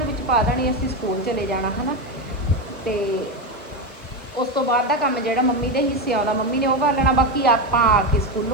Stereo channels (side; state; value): both; normal; correlation 0.14